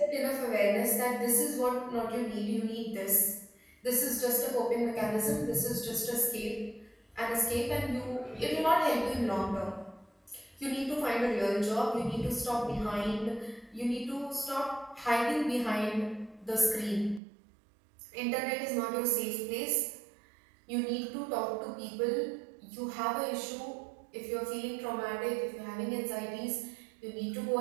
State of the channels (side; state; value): left; drops out; at 17.2 s